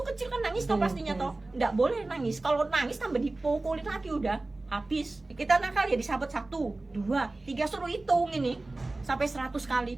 kecil kan nangis toh pastinya toh. Nggak boleh nangis. Kalau nangis tambah dipukulin lagi udah habis. Kita nakal ya disabet 1, 2, 3 suruh hitung ini sampai 100 kali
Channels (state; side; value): quieter; left; 3.0 dB